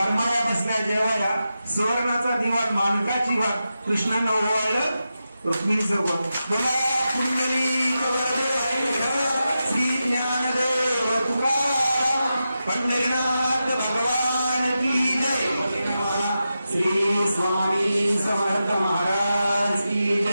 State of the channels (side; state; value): both; inverted; correlation -0.90